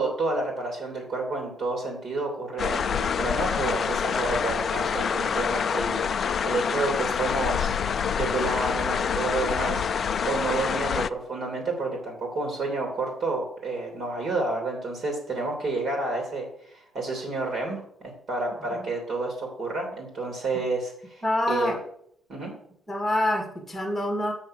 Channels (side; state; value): both; normal; correlation 0.70